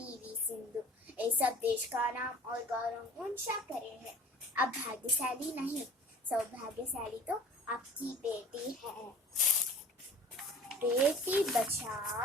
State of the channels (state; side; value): normal; both; correlation 0.44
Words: सिंधु, ये सब देश का नाम और गौरव ऊंचा करे हैं। अब भाग्यशाली नहीं, सौभाग्यशाली तो आपकी बेटी है। बेटी